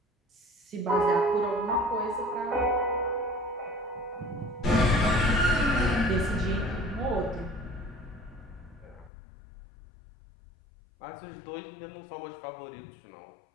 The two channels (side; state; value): right; drops out; at 9.1 s